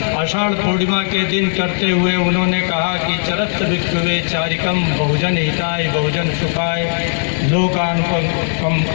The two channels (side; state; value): right; silent; 59 dB below the other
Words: आषाढ़ पूर्णिमा के दिन करते हुए उन्होंने कहा कि चरत भिक्षुवे चारिकम बहुजन हिताय बहुजन सुखाय लोकान